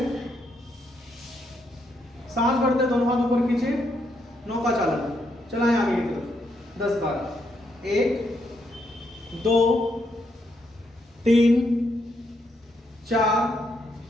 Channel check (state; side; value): normal; both; correlation 0.77